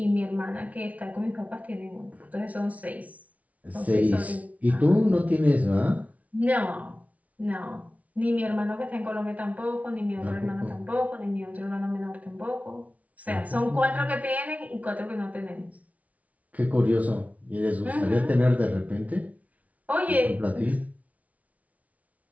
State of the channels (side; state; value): left; late; 0.069 ms